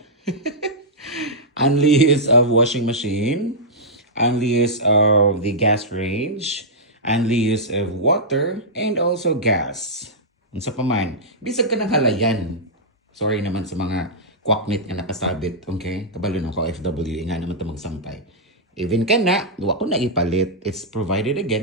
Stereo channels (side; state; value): both; normal; correlation -0.10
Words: Unleash of washing machine, unleash of the gas range, unleash of water, and also gas. Unsa pa man, bisag ka ng halayan. Sorry naman sa mga kwaknit nga nakasabit, okay? Kabalo ng OFW, nga naman ito magsampay. Even ka na, wa ko na ipalit. It's provided